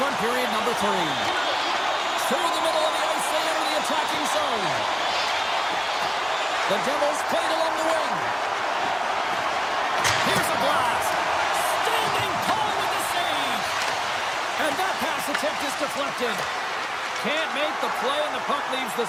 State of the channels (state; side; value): identical; both; correlation 1.00